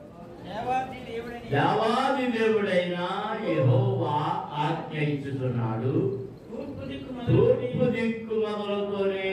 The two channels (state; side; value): identical; both; correlation 1.00